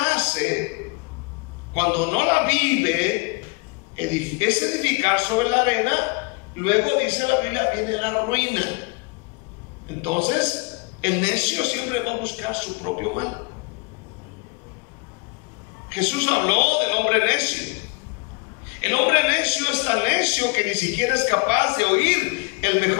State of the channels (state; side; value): quieter; right; 30.0 dB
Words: hace, cuando no la vive, es edificar sobre la arena. Luego dice la Biblia, viene la ruina. Entonces, el necio siempre va a buscar su propio mal. Jesús habló del hombre necio. El hombre necio es tan necio que ni siquiera es capaz de oír el